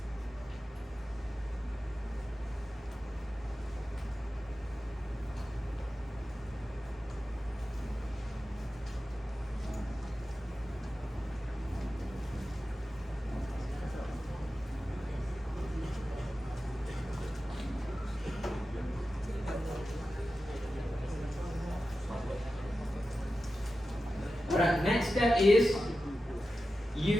Alright, next step is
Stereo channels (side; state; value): both; normal; correlation 0.93